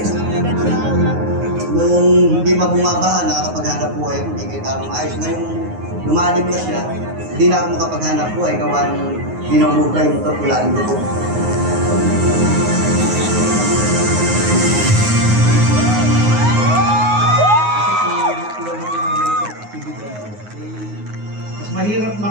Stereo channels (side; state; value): left; late; 9.5 ms